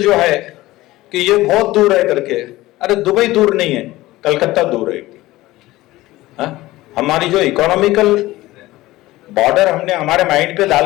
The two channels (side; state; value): right; quieter; 17.8 dB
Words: है कि ये बहुत दूर है करके, अरे दुबई दूर नहीं है, कलकत्ता दूर है। हमारी जो इकोनॉमिकल बॉर्डर हमने हमारे माइंड पे